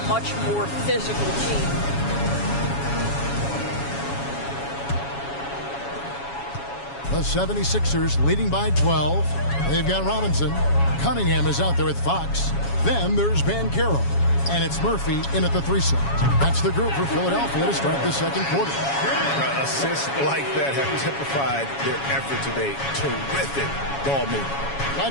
much more physical team. The 76ers leading by 12. They've got Robinson. Cunningham is out there with Fox. Then there's Banchero. And it's Murphy in at the 3 slot. That's the group for Philadelphia to start the second quarter. Assists like that have typified their effort today. Terrific ball movement.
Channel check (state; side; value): late; right; 7.2 ms